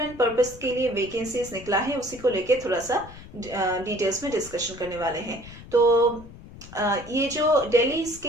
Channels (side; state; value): left; noise; rumble, 17 dB below the sound